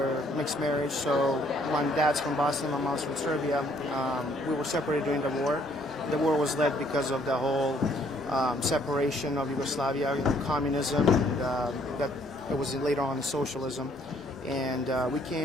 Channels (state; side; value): normal; both; correlation 0.65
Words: mixed marriage, so my dad's from Bosnia, my mom's from Serbia. We were separated during the war. The war was led because of the whole separation of Yugoslavia, communism, that it was later on socialism. And we